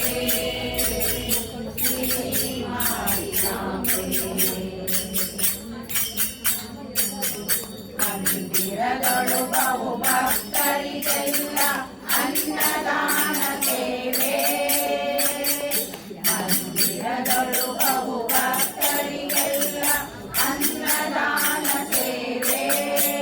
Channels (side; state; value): both; identical; correlation 1.00